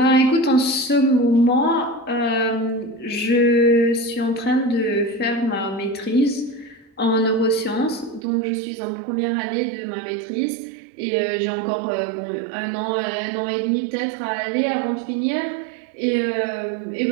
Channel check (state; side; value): drops out; left; at 8.2 s